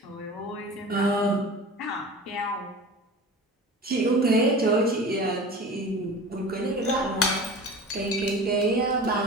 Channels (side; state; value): both; normal; correlation 0.36